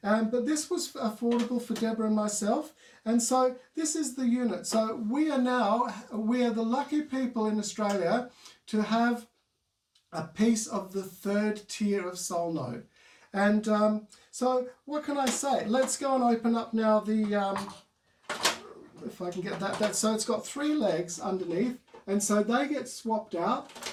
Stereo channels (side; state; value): both; identical; correlation 1.00